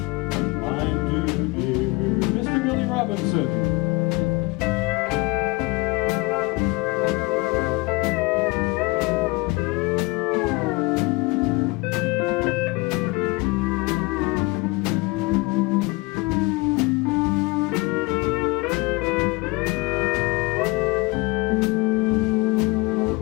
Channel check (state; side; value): quieter; right; 24.3 dB